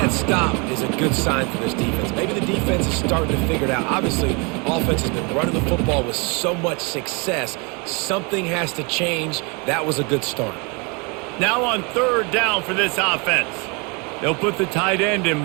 stop is a good sign for this defense. Maybe the defense is starting to figure it out. Obviously, offense has been running the football with so much success. Something has to change. That was a good start. Now on third down for this offense. They'll put the tight end in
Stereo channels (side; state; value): left; quieter; 31.1 dB